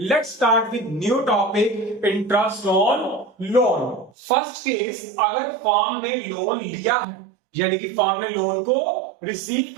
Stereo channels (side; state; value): left; drops out; at 4.1 s